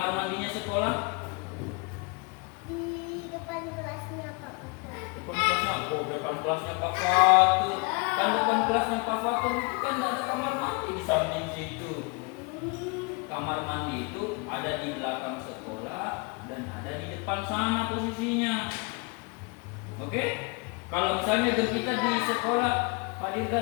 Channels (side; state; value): right; quieter; 30.8 dB